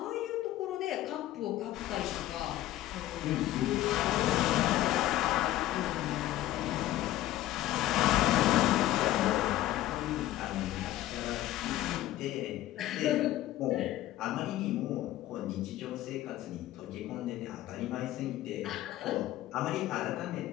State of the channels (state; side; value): quieter; right; 14.5 dB